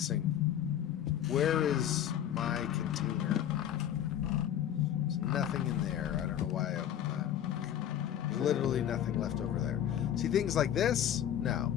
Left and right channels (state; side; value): quieter; right; 10.5 dB